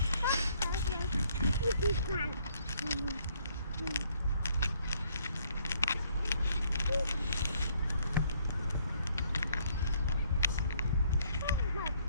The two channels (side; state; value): both; inverted; correlation -0.66